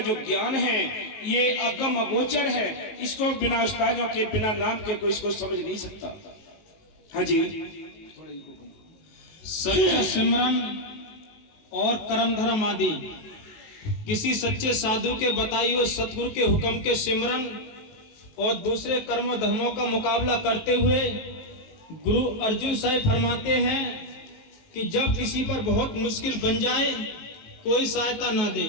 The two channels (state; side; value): late; right; 19 ms